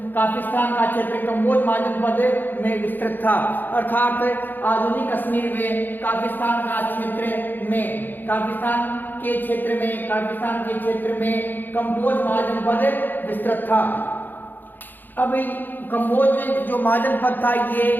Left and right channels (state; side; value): late; right; 0.089 ms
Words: महाजनपद में विस्तृत था। अर्थात आधुनिक कश्मीर में काफिस्तान के क्षेत्र में कंबोज महाजनपद विस्तृत था। अब कंबोज जो महाजनपद था ये